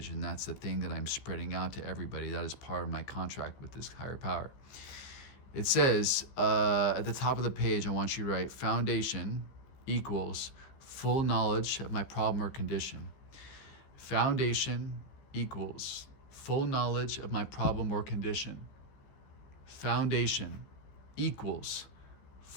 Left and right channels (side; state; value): right; late; 14 ms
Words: and that's the thing that I'm spreading out to everybody. That is part of my contract with this higher power. It says at the top of the page, I want you to write foundation equals full knowledge of my problem or condition. Foundation equals full knowledge of my problem or condition. Foundation equals